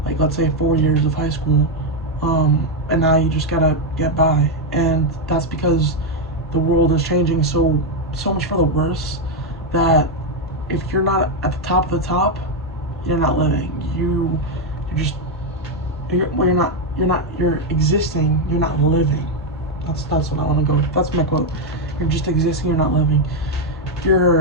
like let's say 4 years of high school, and now you just gotta get by, and that's because the world is changing so much for the worse that if you're not at the top of the top, you're not living. You're existing. You're not living. That's what I want to go with. That's my quote. You're just existing. You're not living.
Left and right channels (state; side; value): normal; both; correlation 0.03